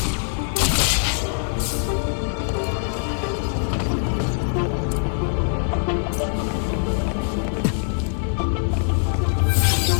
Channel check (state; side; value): silent; right; digital silence